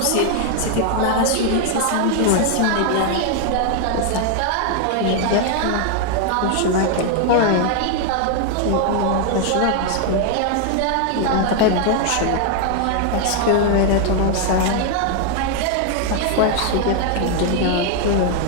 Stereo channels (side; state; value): both; different; correlation 0.00